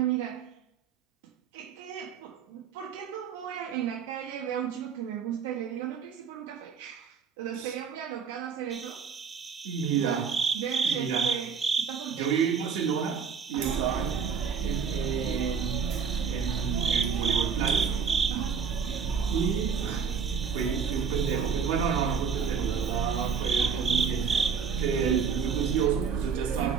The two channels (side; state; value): left; quieter; 6.3 dB